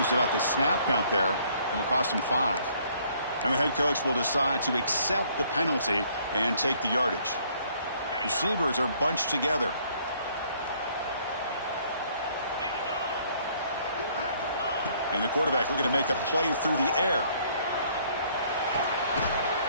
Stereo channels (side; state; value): both; inverted; correlation -0.63